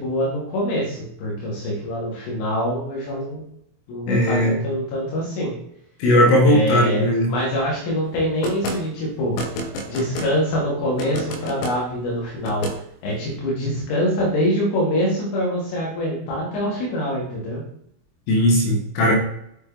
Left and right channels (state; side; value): late; right; 24 ms